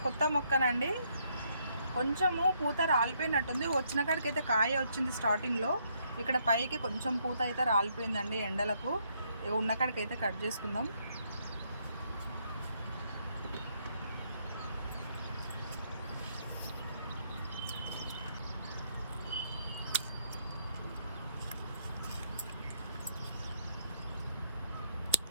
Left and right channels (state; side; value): inverted; both; correlation -0.72